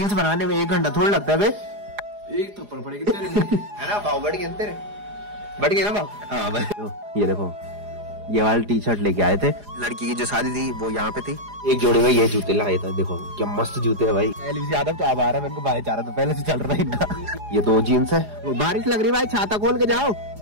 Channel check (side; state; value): left; late; 4.9 ms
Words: Reels बनाने में 1 घंटा थोड़ा लगता है बे। एक थप्पड़ पड़ेगी तेरे है ना भाव बढ़ गए तेरे, बढ़ गए ना भाव। हाँ भाई ये देखो ये वाली टी शर्ट लेके आए थे, लड़की की जो शादी थी वो यहाँ पे थी। एक जोड़ी में ये जूते लाए थे, देखो क्या मस्त जूते है भाई। यादव तो अब आ रहा है, मैंने भाईचारा तो पहले से चल रहा है इनका। ये 2 जीन्स है। बारिश लग रही भाई, छाता खोल के जाओ।